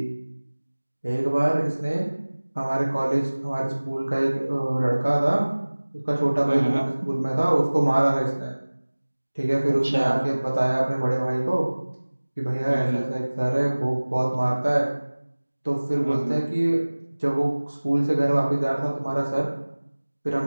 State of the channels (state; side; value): inverted; both; correlation -1.00